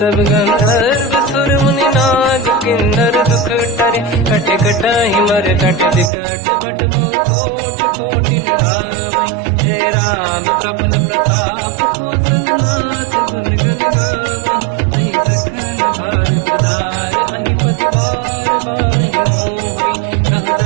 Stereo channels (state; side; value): drops out; left; at 6.1 s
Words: गंधर्व सुर मुनि नाग किन्नर दुख टरे कट कटाहि मर कट विकट भट बहु कोट कोटिन रावै जय राम प्रबल प्रताप कौशल नाथ गुण गन गावै तहि सखन भार उदार अहि पति बार बारहि मोहै कह